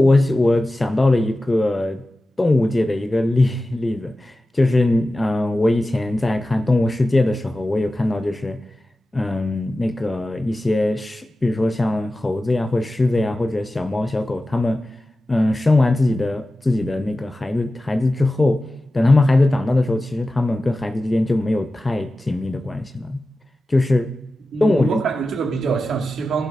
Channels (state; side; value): normal; both; correlation 0.94